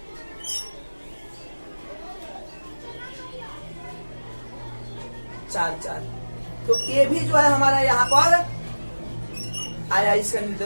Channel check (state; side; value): inverted; both; correlation -1.00